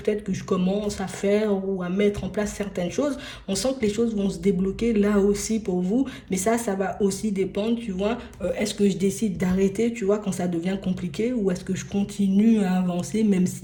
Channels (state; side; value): identical; both; correlation 1.00